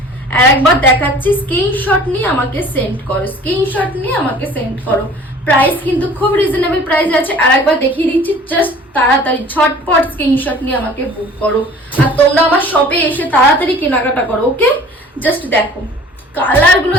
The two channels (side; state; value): both; normal; correlation 0.48